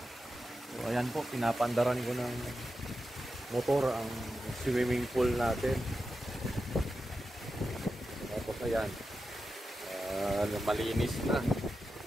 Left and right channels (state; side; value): normal; both; correlation 0.90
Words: So ayan po, pinapandaran ko ng motor ang swimming pool natin. Tapos ayan, malinis na.